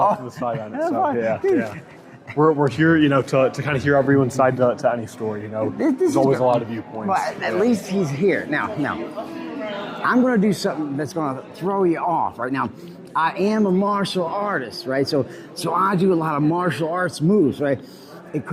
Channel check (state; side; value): identical; both; correlation 1.00